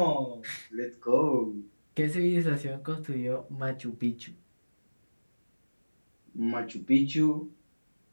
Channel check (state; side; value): inverted; both; correlation -1.00